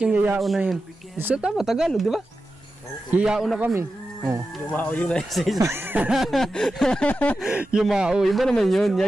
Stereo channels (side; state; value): both; normal; correlation 0.92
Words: yung yayao na yun? So, tama, Tagalog, di ba? Yayao na kami. Lumao yung nasa isa. Yumao, iba naman yun.